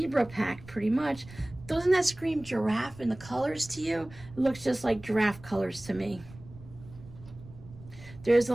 pack pretty much. Doesn't that scream giraffe in the colors to you? It looks just like giraffe colors to me. There's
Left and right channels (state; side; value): noise; right; rumble, 19 dB below the sound